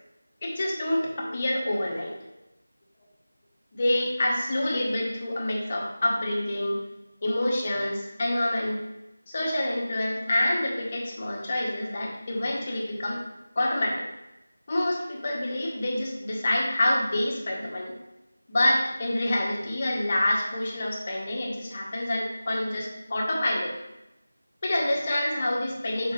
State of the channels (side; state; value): both; inverted; correlation -0.96